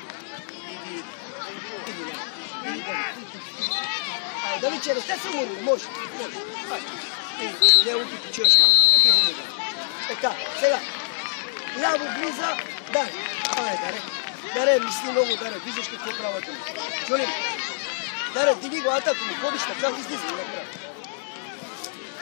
Дали че ръка си му може. Не лупи почуеш малко. Така, сега. Ляво близа, Даре, мисли много, Даре, виждаш какво правят. Чули? Даре, диги го атаку, му ходиш така, излиза и направи.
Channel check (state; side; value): silent; right; digital silence